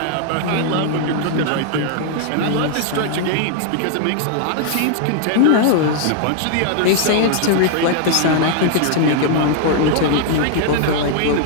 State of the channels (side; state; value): both; different; correlation -0.01